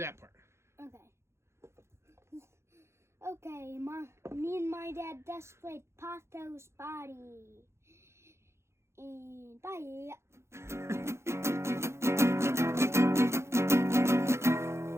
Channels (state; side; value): late; left; 0.13 ms